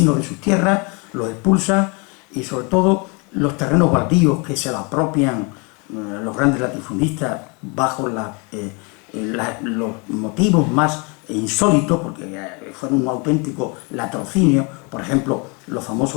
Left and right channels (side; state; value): right; quieter; 31.5 dB